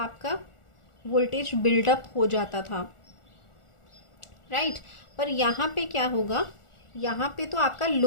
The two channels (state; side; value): late; right; 1.4 ms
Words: वोल्टेज बिल्डअप हो जाता था, राइट। पर यहाँ पे क्या होगा, यहाँ पे तो आपका